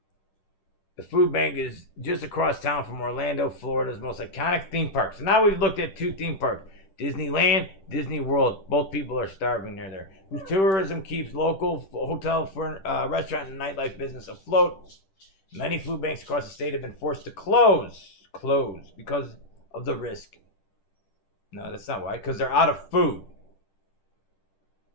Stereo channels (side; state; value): right; late; 10 ms